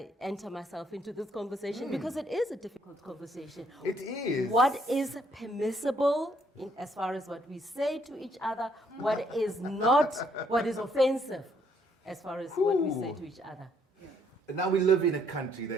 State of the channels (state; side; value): normal; both; correlation 0.69